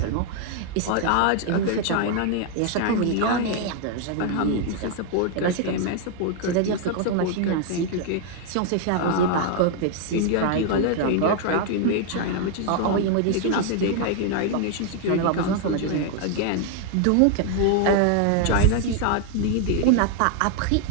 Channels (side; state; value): both; different; correlation 0.00